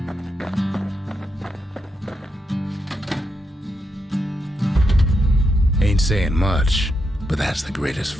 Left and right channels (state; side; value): normal; both; correlation 0.82